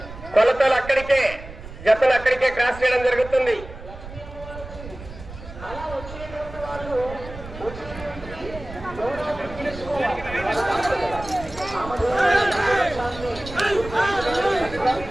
కొలతలు అక్కడికే, జతలు అక్కడికే క్రాస్ చేయడం జరుగుతుంది.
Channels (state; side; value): noise; right; rumble, 13 dB below the sound